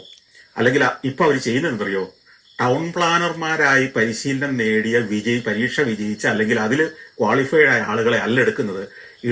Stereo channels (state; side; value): identical; both; correlation 1.00